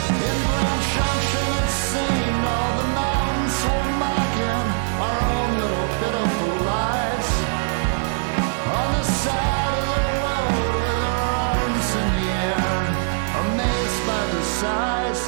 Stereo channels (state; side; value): silent; left; digital silence